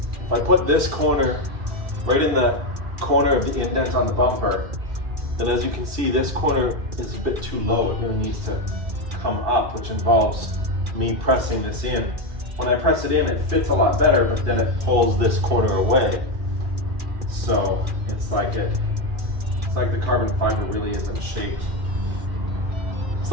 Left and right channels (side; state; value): left; late; 2.7 ms